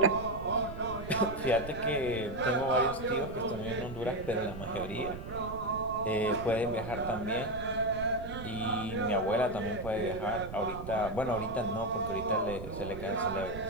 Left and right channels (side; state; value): right; noise; rumble, 10 dB below the sound